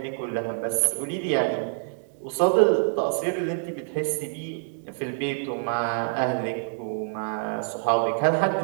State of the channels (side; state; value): left; silent; digital silence